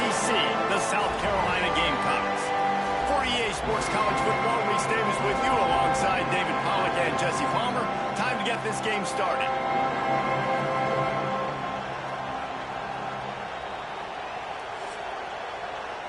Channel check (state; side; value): identical; both; correlation 1.00